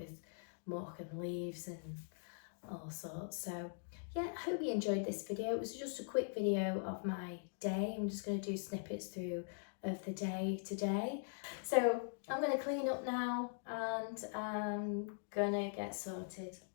muck and leaves and all sorts. So yeah, I hope you enjoyed this video. It was just a quick video of my day. I'm just going to do snippets through of the day today. So I'm going to clean up now and I'm going to get sorted,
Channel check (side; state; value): right; silent; digital silence